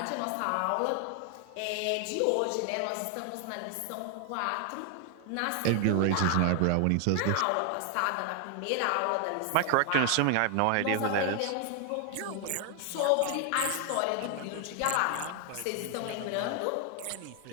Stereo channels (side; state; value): both; different; correlation 0.00